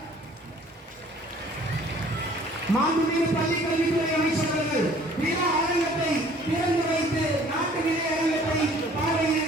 மாண்புமிகு பள்ளி கல்வித்துறை அமைச்சர் அவர்கள் விழா அரங்கத்தை திறந்து வைத்து நாட்டு விதை அரங்கத்தை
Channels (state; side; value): normal; both; correlation 0.54